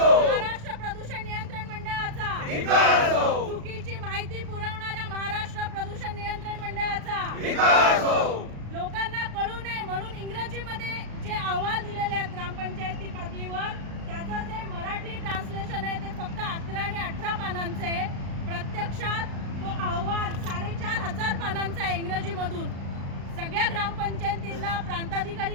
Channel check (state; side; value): late; left; 36 ms